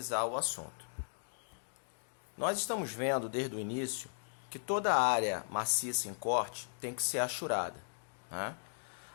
o assunto. Nós estamos vendo desde o início que toda área maciça em corte tem que ser ashurada, né?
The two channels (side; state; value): right; silent; digital silence